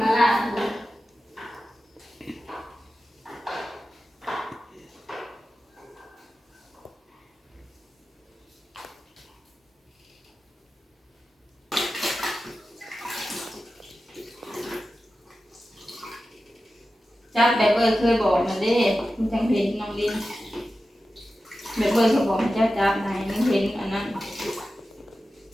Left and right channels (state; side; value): normal; both; correlation 0.93